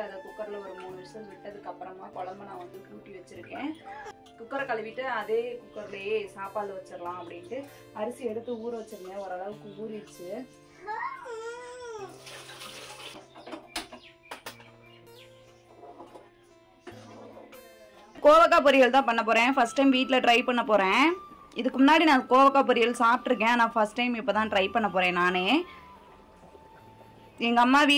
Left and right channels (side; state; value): both; identical; correlation 1.00